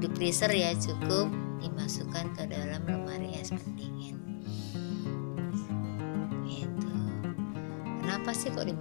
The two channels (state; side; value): silent; right; 54 dB below the other